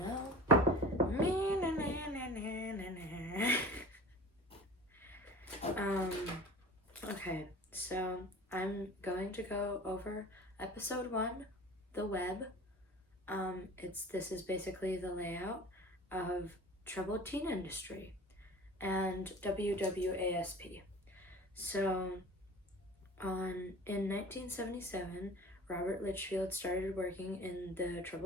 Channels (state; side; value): normal; both; correlation 0.40